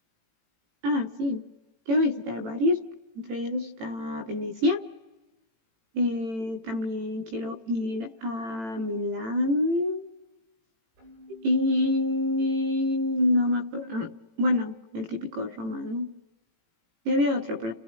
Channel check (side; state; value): left; late; 18 ms